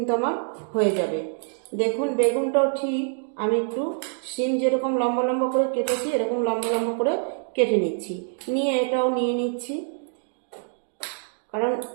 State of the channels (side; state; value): left; silent; 59 dB below the other